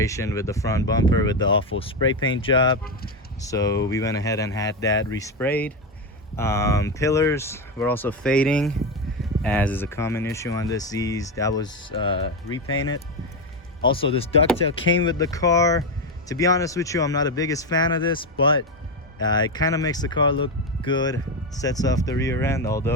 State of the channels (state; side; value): normal; both; correlation 0.11